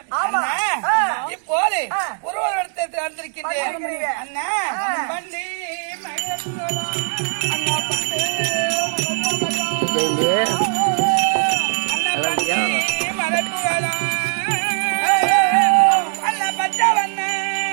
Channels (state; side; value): silent; left; 62 dB below the other